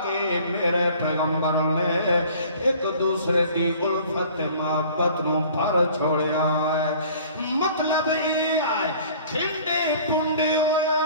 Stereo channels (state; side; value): inverted; both; correlation -0.50